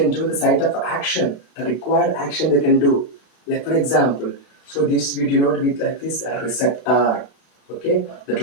do the site of action, the required action they can do. Like for example, so this we denote with like this a receptor. Okay, the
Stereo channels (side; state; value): right; late; 32 ms